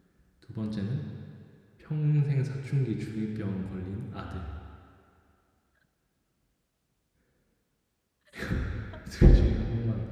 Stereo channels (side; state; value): both; identical; correlation 1.00